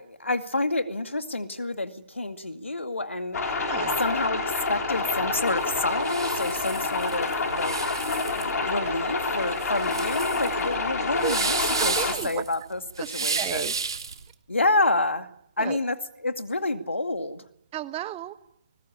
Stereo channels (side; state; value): both; inverted; correlation -0.42